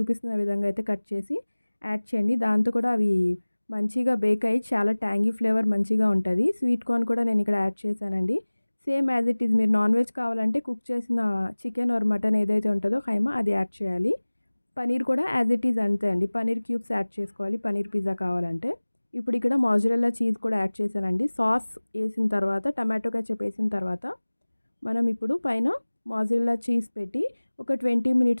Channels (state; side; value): inverted; both; correlation -1.00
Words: విధంగా అయితే కట్ చేసి యాడ్ చేయండి. దాంతో కూడా అవి మంచిగా బేక్ అయ్యి చాలా ట్యాంగీ ఫ్లేవర్ మంచిగా ఉంటది. స్వీట్ కార్న్ కూడా నేను ఇక్కడ యాడ్ చేశానండి. సేమ్ యాజ్ ఇట్ ఈజ్ మీరు నాన్ వెజ్ కావాలంటే కుక్ చేసిన చికెన్ ఆర్ మటన్ ఏదైతే ఉంటుందో ఖైమా అది యాడ్ చేయాలి. పనీర్ కూడా యాజ్ ఇట్ ఈజ్ అంతే అండి. పనీర్ క్యూబ్స్ యాడ్ చేసుకోవాలి పనీర్ పిజ్జా కావాలంటే. ఇప్పుడు ఇక్కడ మోజరెల్లా చీజ్ కూడా యాడ్ చేశానండి. సాస్ ఏసిన తర్వాత టమాటో కెచప్ ఏసిన తర్వాత మనం ఇప్పుడు పైన మోజరెల్లా చీజ్ పెట్టి ఒక 20